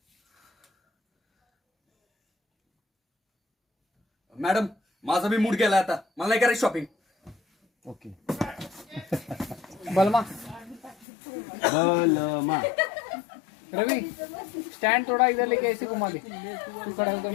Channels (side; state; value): right; drops out; at 11.1 s